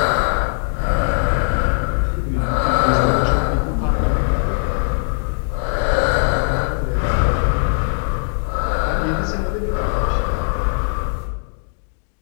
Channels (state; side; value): silent; right; digital silence